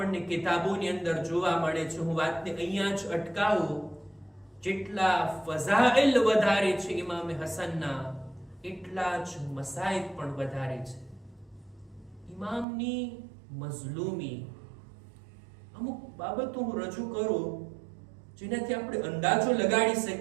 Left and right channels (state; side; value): drops out; left; at 12.7 s